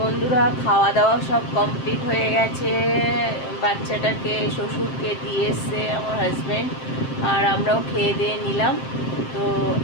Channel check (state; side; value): late; right; 7.6 ms